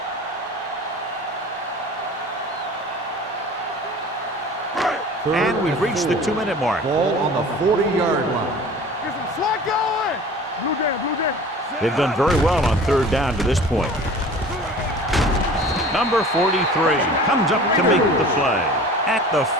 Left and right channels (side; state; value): both; normal; correlation 0.42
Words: And we've reached the 2-minute mark. Ball on the 40-yard line. Get some slack going. Blue jam. They've done very well on 3rd down to this point. Number 43 comes up to make the play. At the